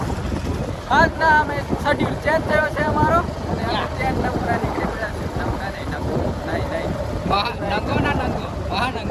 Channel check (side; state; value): both; identical; correlation 1.00